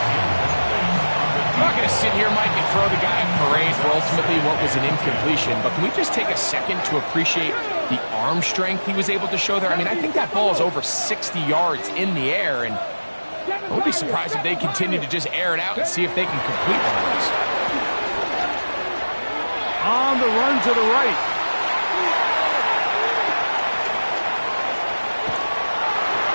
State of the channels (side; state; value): both; inverted; correlation -1.00